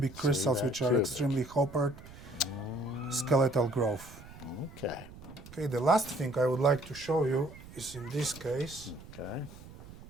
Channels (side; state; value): right; noise; rumble, 17 dB below the sound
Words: crystals, that, which are cubic. extremely coppered, skeletal growth. Okay. Okay, the last thing I would like to show you is in this case. Okay.